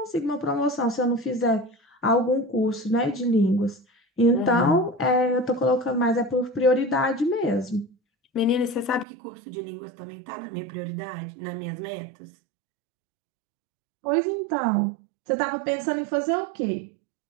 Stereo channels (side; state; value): left; drops out; at 9.1 s